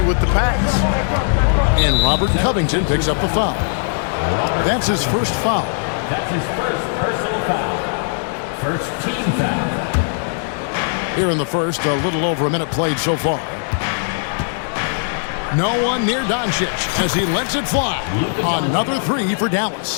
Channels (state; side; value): silent; right; 67 dB below the other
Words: with the pass. And Robert Covington picks up the foul. That's his first foul. That's his first personal foul. First team foul. Here in the first, a little over a minute played so far. No one near Doncic as he lets it fly. Another 3 for